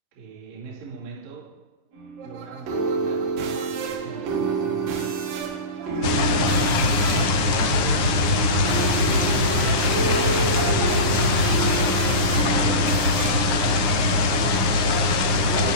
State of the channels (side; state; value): left; late; 9.9 ms